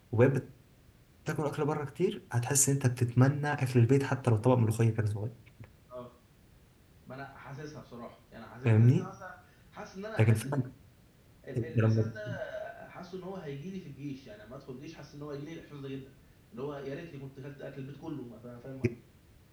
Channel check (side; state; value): both; identical; correlation 1.00